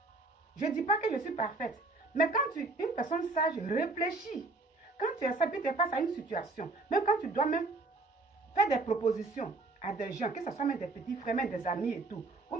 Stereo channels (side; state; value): left; quieter; 3.3 dB